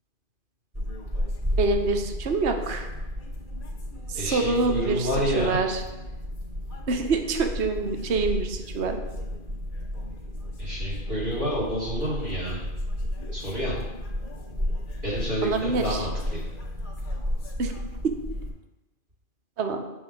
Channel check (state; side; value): late; left; 2.5 ms